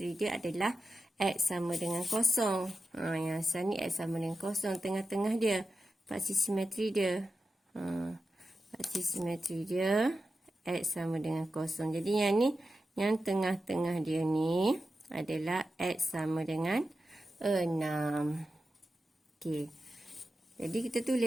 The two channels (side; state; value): both; normal; correlation 0.91